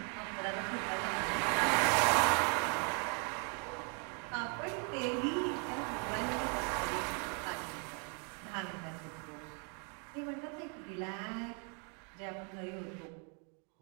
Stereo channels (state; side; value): quieter; left; 37.3 dB